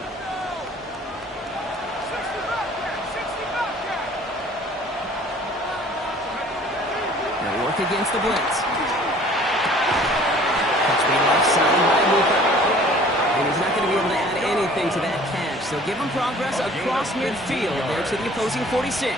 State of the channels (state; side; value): normal; both; correlation 0.51